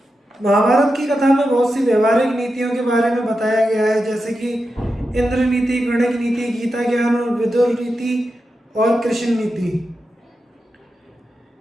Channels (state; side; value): normal; both; correlation 0.89